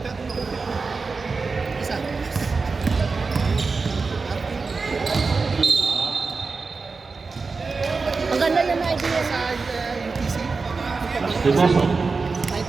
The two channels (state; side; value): quieter; left; 4.4 dB